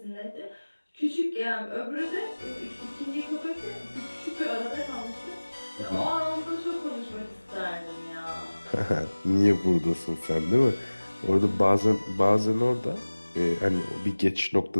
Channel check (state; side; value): inverted; both; correlation -1.00